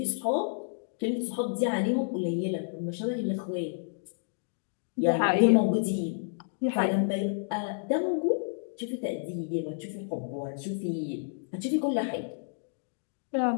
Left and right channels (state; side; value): silent; right; digital silence